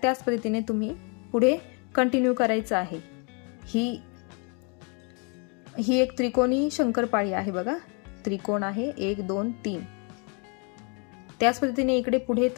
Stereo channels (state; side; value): quieter; right; 34.9 dB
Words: त्याच पद्धतीने तुम्ही पुढे कंटिन्यू करायचं आहे. ही एक त्रिकोणी शंकरपाळी आहे बघा. त्रिकोण आहे 1 2 3. त्याच पद्धतीने इकडे पुढे